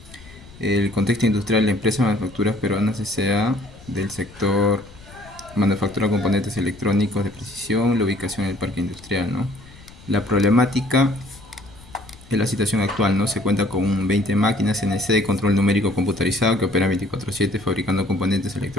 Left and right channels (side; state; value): left; noise; rumble, 21 dB below the sound